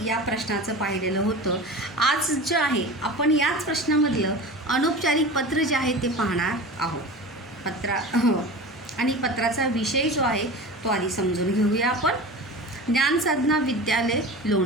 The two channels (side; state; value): both; normal; correlation 0.33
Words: या प्रश्नाचं पाहिलेलं होतं. आज जे आहे आपण याच प्रश्नामधलं अनौपचारिक पत्र जे आहे ते पाहणार आहोत. आणि पत्राचा विषय जो आहे तो आधी समजून घेऊया आपण. ज्ञानसाधना विद्यालय